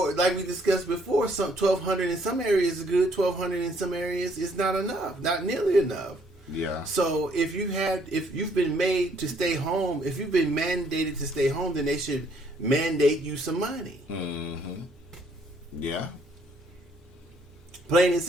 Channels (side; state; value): both; normal; correlation 0.66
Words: like we discussed before, some 1,200 in some areas is good. 1,200 in some areas is not enough, not nearly enough. Yeah. So if you've been made to stay home, if you've been mandated to stay home, then they should mandate you some money. Mm-hmm. Yeah. Plain and